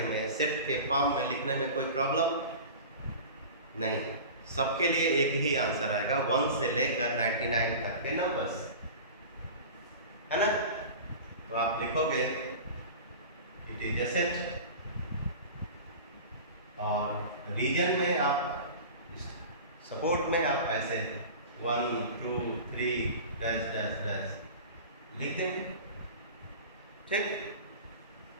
में, सेट के फॉर्म में लिखने में कोई प्रॉब्लम नहीं है? सबके लिए एक ही आंसर आएगा, 1 से लेकर 99 तक के नंबर्स, है ना? तो आप लिखोगे इट इज ए सेट, और रीजन में आप, सपोर्ट में आप ऐसे 1 2 3 डैश डैश डैश लिख देंगे, ठीक?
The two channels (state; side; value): inverted; both; correlation -0.35